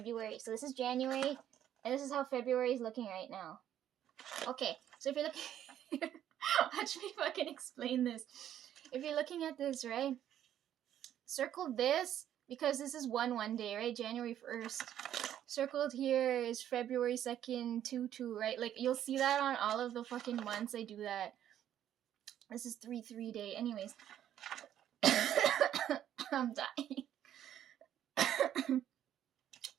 So this is January, and this is how February is looking right now. Okay, so if you're looking... Watch me fucking explain this. If you're looking at this, right? Circle this, because this is 1 day, right? January 1st. Circled here is February 2nd, 2/2, right? Like, you'll see that on all of the fucking months I do that. This is 3/3 day. Anyways. I'm dying.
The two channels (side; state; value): left; quieter; 10.9 dB